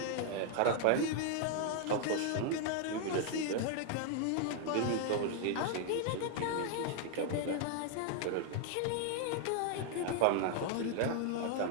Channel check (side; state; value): both; different; correlation 0.00